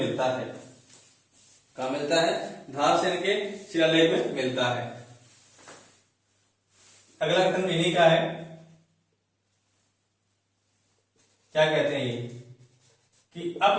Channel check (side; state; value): both; identical; correlation 1.00